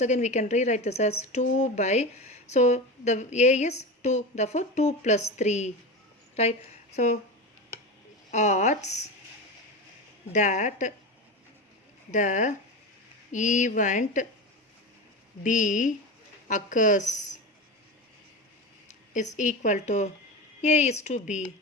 again we can rewrite this as 2 by, so the A is 2, therefore 2 plus 3. Right? So odds that the event B occurs is equal to, A is to B.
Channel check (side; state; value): both; normal; correlation 0.23